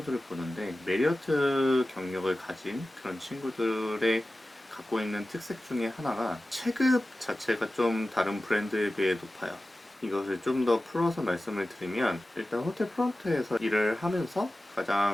보는데, 메리어트 경력을 가진 그런 친구들의 갖고 있는 특색 중에 하나가 체급 자체가 좀 다른 브랜드에 비해 높아요. 이것을 좀 더 풀어서 말씀을 드리면, 일단 호텔 프론트에서 일을 하면서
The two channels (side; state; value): both; normal; correlation 0.95